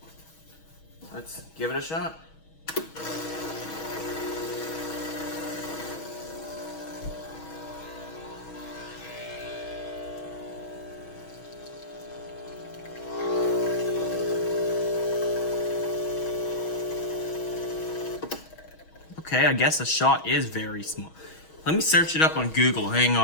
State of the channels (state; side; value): late; right; 6.3 ms